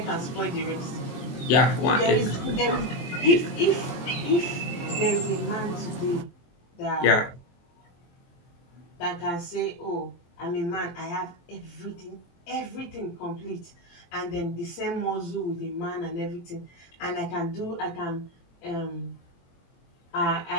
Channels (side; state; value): right; late; 23 ms